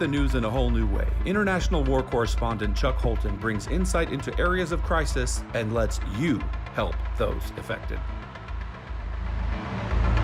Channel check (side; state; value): both; identical; correlation 1.00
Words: news in a whole new way, international war correspondent Chuck Holton brings insight into areas of crisis and lets you help those affected.